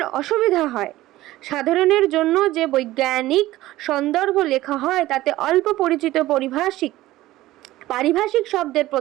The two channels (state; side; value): quieter; left; 16.4 dB